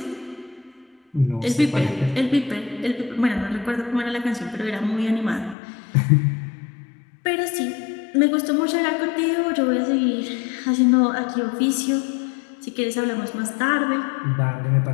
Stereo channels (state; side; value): drops out; right; at 5.6 s